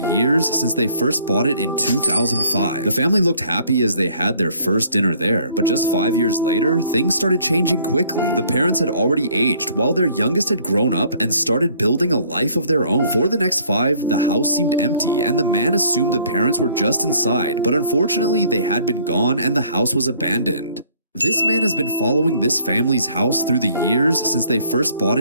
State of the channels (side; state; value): both; inverted; correlation -0.59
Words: since they first bought it in 2005. The family looked happy as they had their first dinner there, but just 5 years later, things started changing quickly. The parents had already aged, while their youngest had grown up and started building a life of their own. For the next 5, the house seemed empty, and the man assumed the parents were just inside, but unfortunately, they had been gone and the house was abandoned. This man has been following this family's house through the years since they first bought